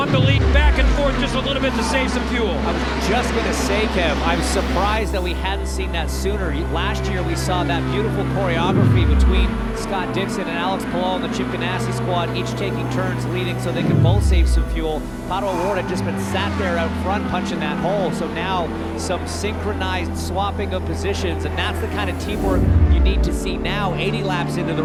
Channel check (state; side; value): identical; both; correlation 1.00